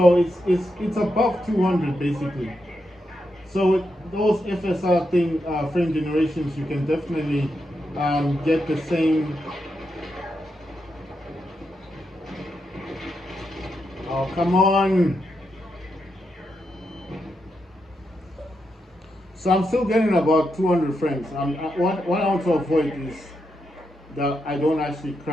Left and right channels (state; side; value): normal; both; correlation 0.84